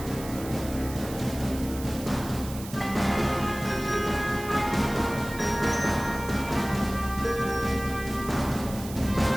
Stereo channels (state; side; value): noise; right; hiss, 14 dB below the sound